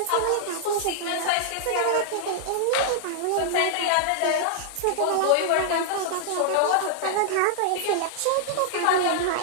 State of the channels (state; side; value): different; both; correlation -0.01